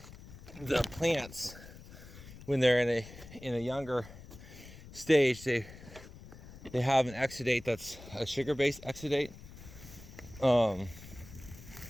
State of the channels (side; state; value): left; noise; rumble, 17 dB below the sound